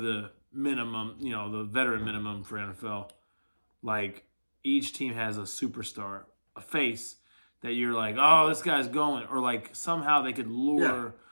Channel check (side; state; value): both; inverted; correlation -1.00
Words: minimum, the veteran minimum for NFL. Like each team has a superstar, a face that you're like, oh, this guy's going, or like somehow they could lure